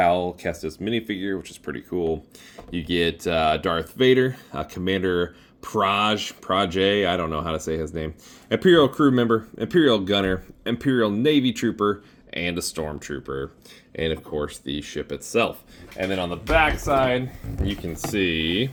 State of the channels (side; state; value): both; identical; correlation 1.00